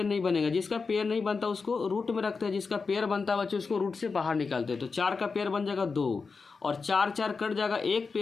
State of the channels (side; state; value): right; quieter; 4.7 dB